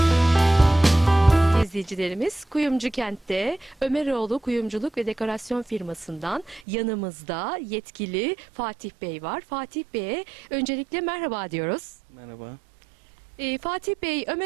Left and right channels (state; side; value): drops out; left; at 6.6 s